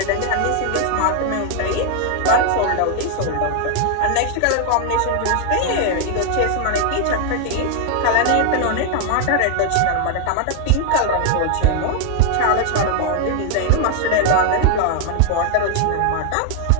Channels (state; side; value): different; both; correlation 0.00